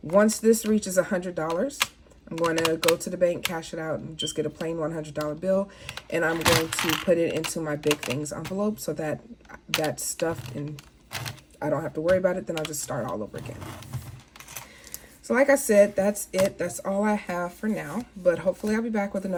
once this reaches $100, I'm going to go to the bank, cash it out, and just get a plain $100 bill. And I'm going to put it into my big things envelope so that that's stuffed and I don't have to worry about it. Then I'll just start all over again. So like I said, that's it. That's all I have for now. But hopefully I'll be back with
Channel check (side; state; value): both; identical; correlation 1.00